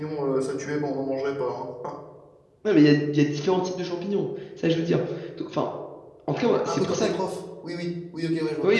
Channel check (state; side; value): identical; both; correlation 1.00